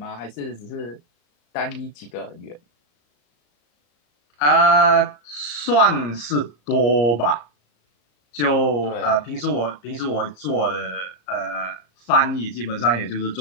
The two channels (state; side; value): late; right; 34 ms